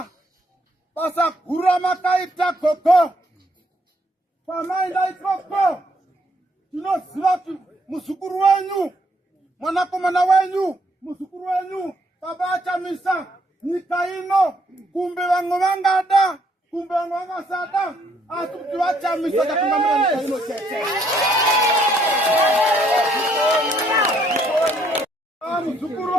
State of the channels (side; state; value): both; normal; correlation 0.69